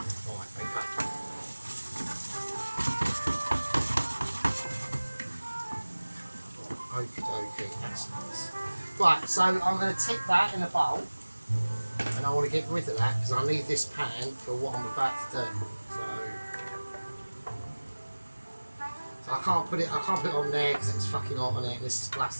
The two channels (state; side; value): inverted; both; correlation -1.00